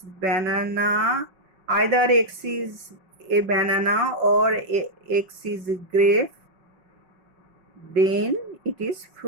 banana, either x is A banana or x is a grape, then it is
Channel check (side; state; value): left; late; 5.4 ms